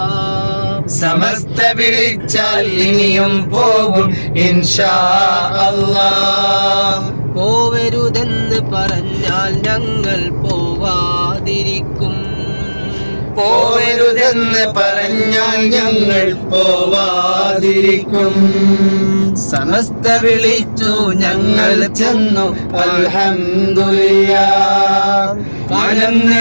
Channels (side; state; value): both; inverted; correlation -1.00